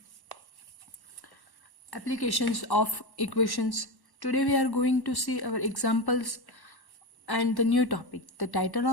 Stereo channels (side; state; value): right; late; 1.1 ms